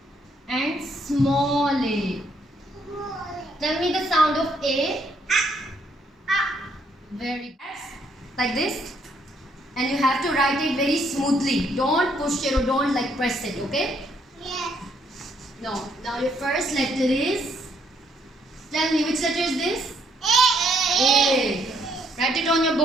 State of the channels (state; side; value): normal; both; correlation 0.71